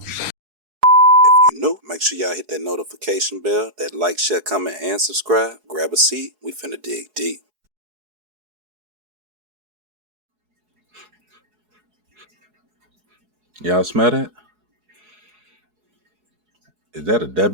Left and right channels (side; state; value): left; late; 4.7 ms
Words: If you're new, make sure y'all hit that notification bell, that like, share, comment, and subscribe. Grab a seat. We finna dig deep. Y'all smell that? Is that a